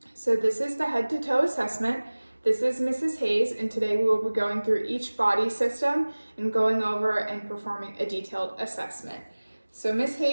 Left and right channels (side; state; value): both; inverted; correlation -1.00